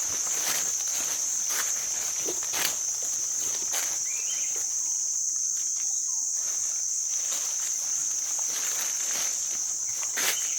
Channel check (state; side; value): identical; both; correlation 1.00